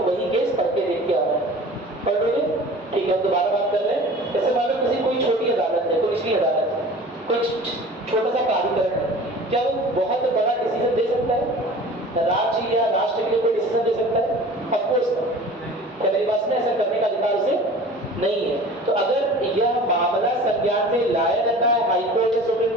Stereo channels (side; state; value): both; normal; correlation 0.42